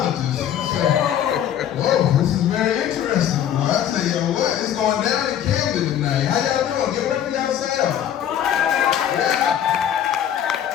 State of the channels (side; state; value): right; quieter; 10.1 dB